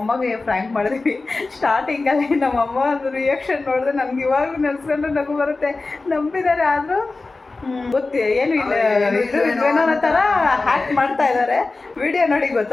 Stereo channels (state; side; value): quieter; right; 3.5 dB